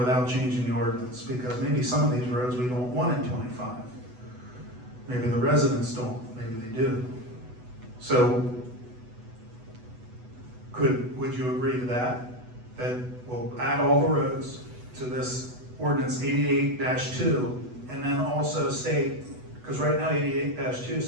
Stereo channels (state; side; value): late; left; 8.1 ms